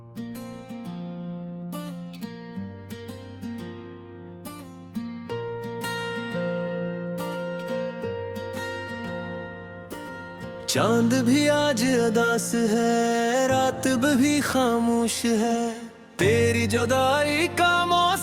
चांद भी आज अदास है, रात भी खामोश है, तेरी जुदाई का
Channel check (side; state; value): both; identical; correlation 1.00